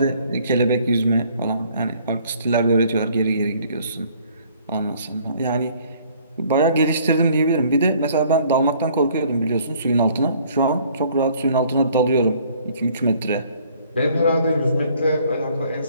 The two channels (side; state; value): both; inverted; correlation -0.59